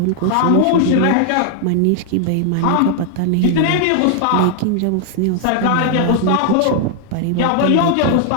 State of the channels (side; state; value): both; different; correlation 0.00